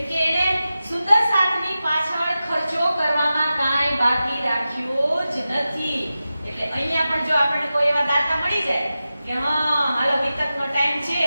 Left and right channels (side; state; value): both; inverted; correlation -0.93